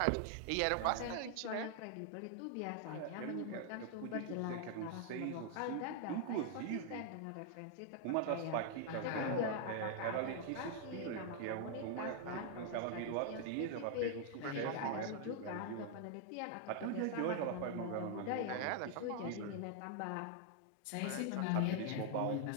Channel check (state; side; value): different; both; correlation 0.00